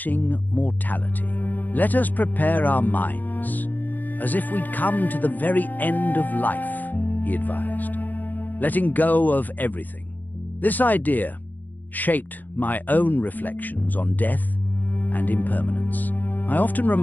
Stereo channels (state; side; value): late; right; 0.085 ms